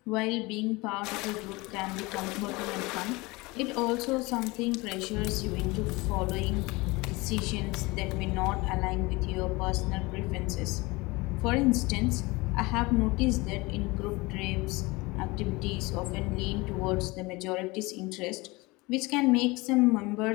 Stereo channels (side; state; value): right; quieter; 23.5 dB